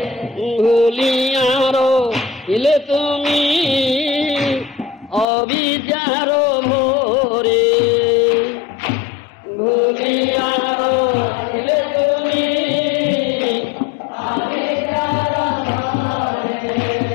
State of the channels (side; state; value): right; drops out; at 5.2 s